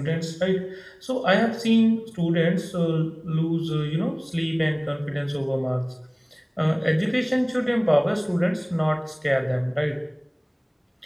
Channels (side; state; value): both; identical; correlation 1.00